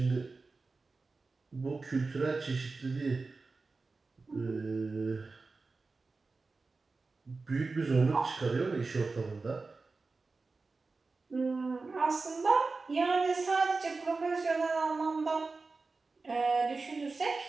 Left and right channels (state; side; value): quieter; left; 3.9 dB